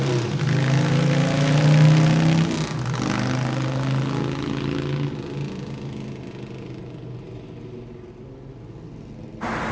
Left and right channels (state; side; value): identical; both; correlation 1.00